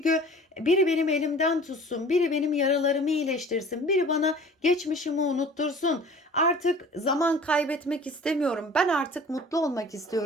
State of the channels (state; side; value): normal; both; correlation 0.46